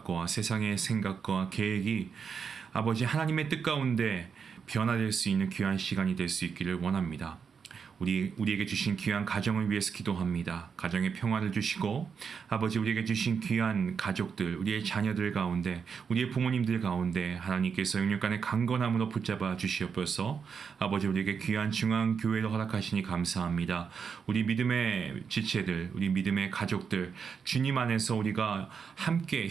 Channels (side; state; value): left; quieter; 6.3 dB